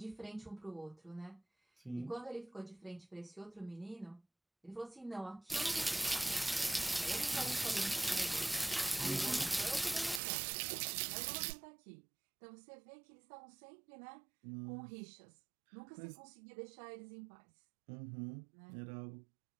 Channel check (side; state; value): left; drops out; at 10.2 s